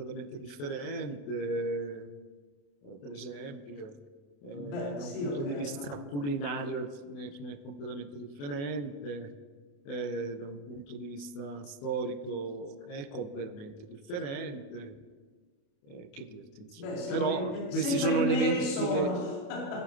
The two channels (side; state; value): right; late; 28 ms